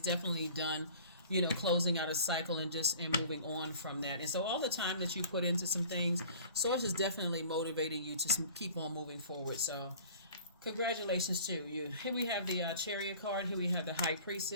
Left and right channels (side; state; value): both; inverted; correlation -0.46